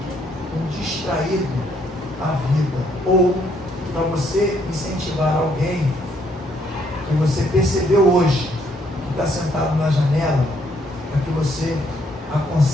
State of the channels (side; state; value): both; normal; correlation 0.70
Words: um distraído à vida. Ou para você incentivar alguém que você percebeu hoje que está sentado na janela, para que você